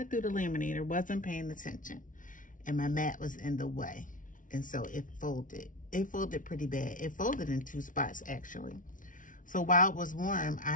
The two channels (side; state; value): right; late; 0.38 ms